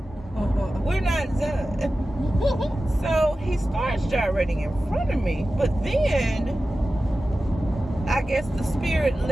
We're not done. So he starts gyrating in front of me, but then I guess the spirit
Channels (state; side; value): normal; both; correlation 0.94